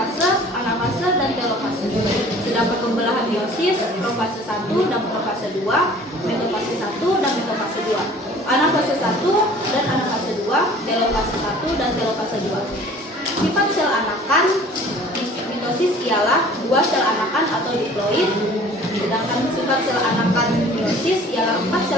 anafase, dan telofase. Sedangkan pembelahan meiosis profase 1 dan profase 2, metafase 1 dan metafase 2, anafase 1 dan anafase 2, telofase 1 dan telofase 2. Sifat sel anakan mitosis ialah 2 sel anakan atau diploid, sedangkan sifat sel anakan meiosis ialah 4 sel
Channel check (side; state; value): both; normal; correlation 0.49